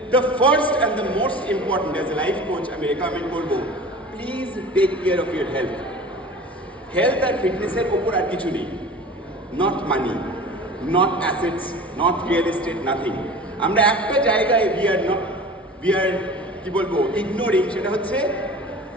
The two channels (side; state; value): both; normal; correlation 0.39